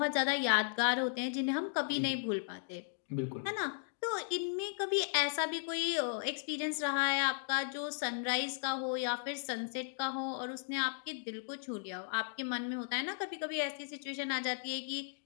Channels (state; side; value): silent; right; digital silence